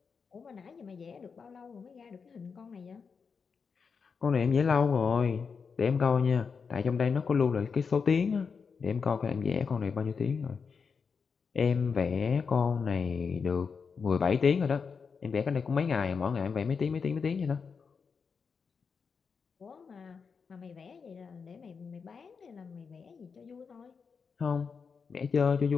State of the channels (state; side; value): quieter; right; 5.6 dB